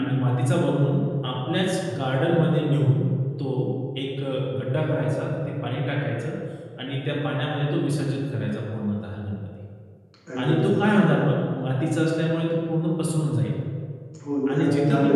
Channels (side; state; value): both; identical; correlation 1.00